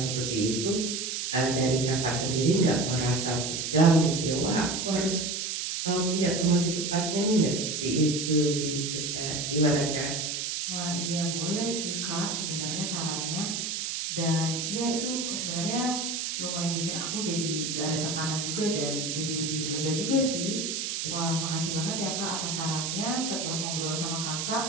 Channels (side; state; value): right; noise; hiss, 2 dB below the sound